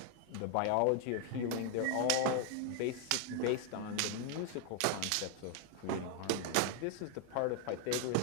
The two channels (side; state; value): both; different; correlation 0.00